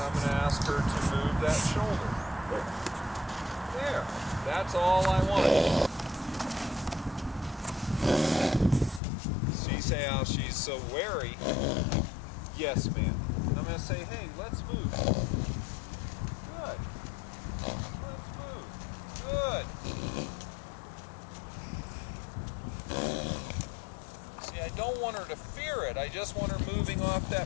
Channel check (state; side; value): drops out; right; at 9.0 s